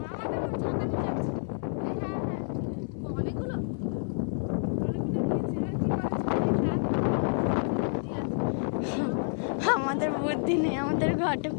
আমাদের বুদ্ধি নেই, আমাদের ঘটে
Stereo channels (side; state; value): right; silent; 59 dB below the other